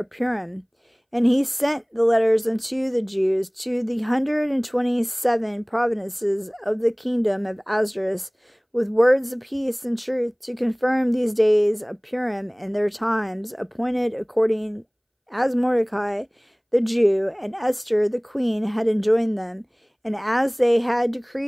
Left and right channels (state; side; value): identical; both; correlation 1.00